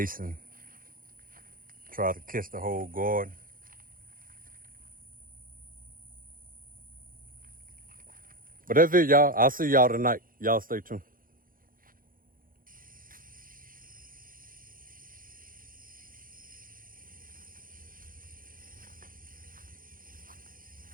Try to catch the whole garden. But that's it, y'all. I'll see y'all tonight. Y'all stay tuned.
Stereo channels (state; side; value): late; left; 0.41 ms